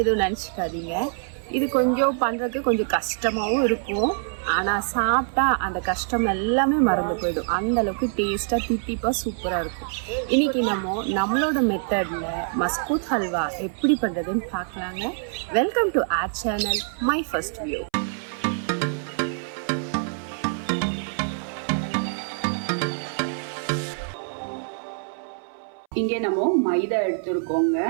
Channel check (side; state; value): left; silent; 62 dB below the other